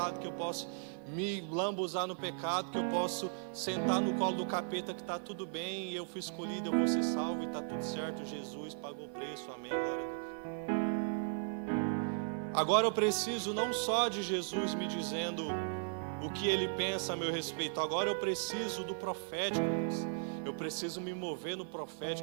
que eu posso me lambuzar no pecado, que eu posso sentar no colo do capeta que está tudo bem, e eu fui escolhido, eu vou ser salvo e está tudo certo. Jesus pagou o preço, amém, glória a Deus. Agora eu preciso não só de Jesus me dizendo o que Ele pensa a meu respeito, agora eu preciso do profético. Eu preciso me mover no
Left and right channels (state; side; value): silent; left; digital silence